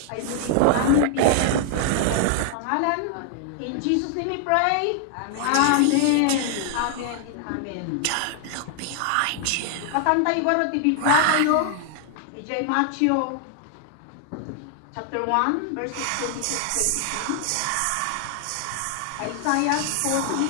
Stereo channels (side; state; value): both; different; correlation 0.00